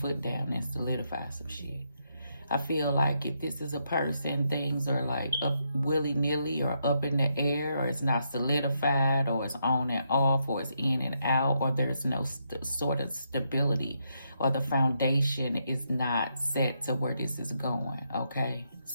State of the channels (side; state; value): both; inverted; correlation -0.79